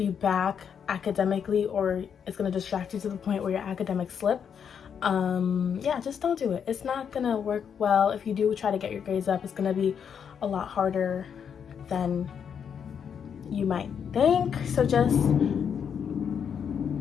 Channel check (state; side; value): quieter; right; 7.5 dB